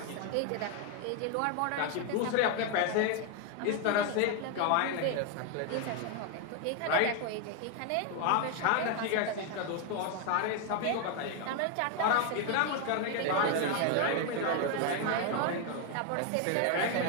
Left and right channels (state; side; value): different; both; correlation 0.01